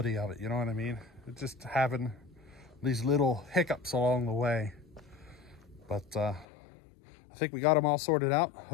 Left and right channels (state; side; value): drops out; right; at 6.5 s